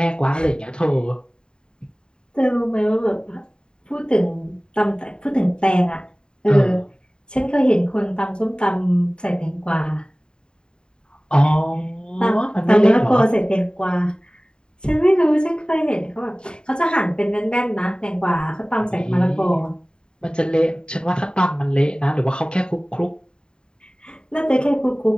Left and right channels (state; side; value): late; right; 0.048 ms